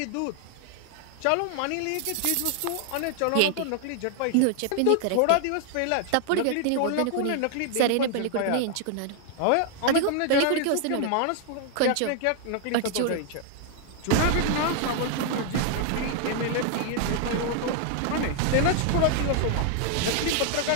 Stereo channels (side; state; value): both; different; correlation 0.00